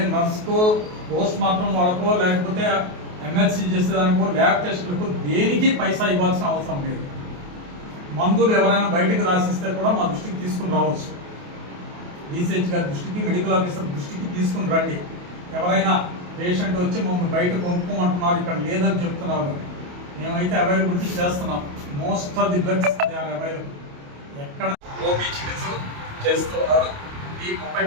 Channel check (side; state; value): left; late; 28 ms